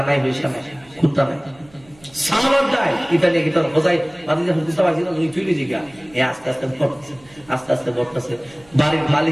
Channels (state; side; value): noise; right; hum, 27 dB below the sound